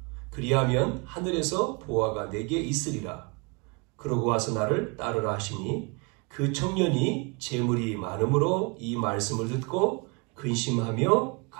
그리하면 하늘에서 보화가 내게 있으리라. 그러고 와서 나를 따르라 하시니 그 청년이 재물이 많음으로 이 말씀을 듣고 근심하며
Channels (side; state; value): left; quieter; 30.6 dB